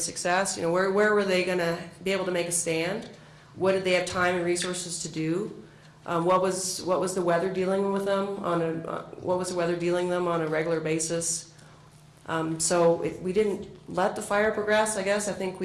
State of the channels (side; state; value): both; identical; correlation 1.00